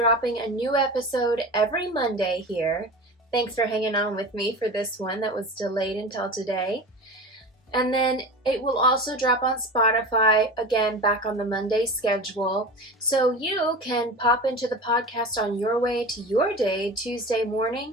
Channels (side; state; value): both; normal; correlation 0.31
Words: a new episode every Monday here. Thanks for hanging on with me for this one that was delayed until today. And then it will also drop on Spotify, again, back on the Monday schedule. So you can pop into the podcast on your way to your day, Tuesday